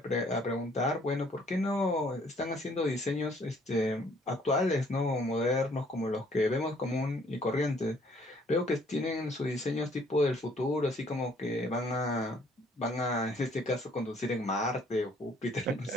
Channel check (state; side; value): normal; both; correlation 0.62